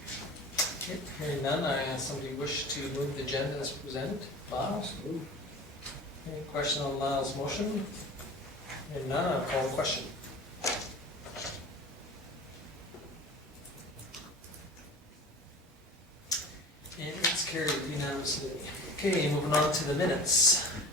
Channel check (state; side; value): normal; both; correlation 0.38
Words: Okay, hearing none, somebody wish to move the agenda as presented. Lyles? Any question on Lyle's motion? Hearing none, I'll call the question. And it's carried unanimously. Okay, moving on to the minutes.